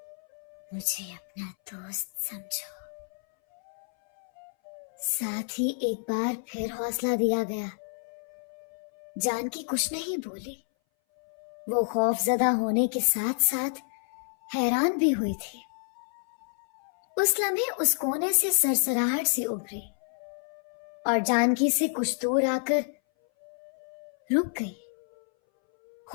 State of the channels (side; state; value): right; silent; 58 dB below the other